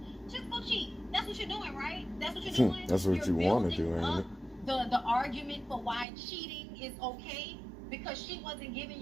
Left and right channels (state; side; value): drops out; left; at 6.1 s